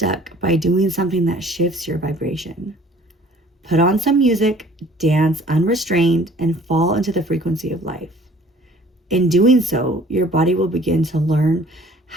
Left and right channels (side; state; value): both; normal; correlation 0.53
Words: by doing something that shifts your vibration. Put on some music, dance unrestrained, and fall into the frequency of life. In doing so, your body will begin to learn